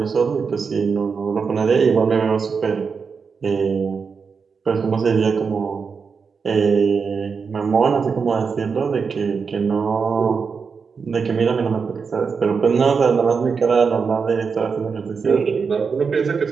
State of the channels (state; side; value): quieter; left; 5.5 dB